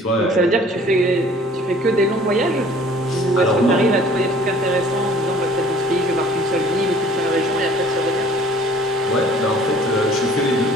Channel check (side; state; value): both; normal; correlation 0.53